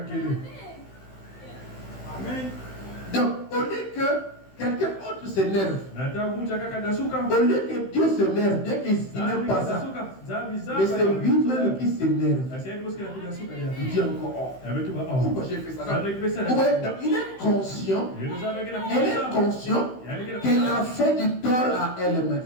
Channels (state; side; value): late; right; 15 ms